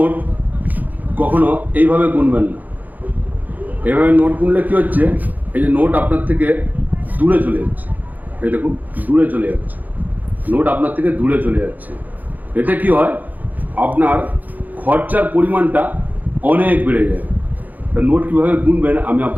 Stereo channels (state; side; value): late; left; 0.082 ms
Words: কখনো এইভাবে গুনবেন না। এইভাবে নোট গুনলে কী হচ্ছে, এই যে নোট আপনার থেকে দূরে চলে যাচ্ছে, এই দেখুন দূরে চলে যাচ্ছে, নোট আপনার থেকে দূরে চলে যাচ্ছে। এতে কি হয়, আপনার খরচার পরিমাণটা অনেক বেড়ে যায়। তা নোট কীভাবে গুনবেন আমি